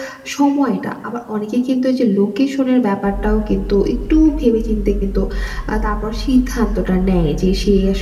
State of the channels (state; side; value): identical; both; correlation 1.00